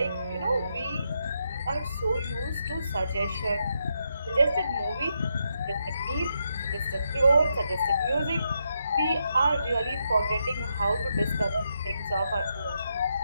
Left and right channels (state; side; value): inverted; both; correlation -0.81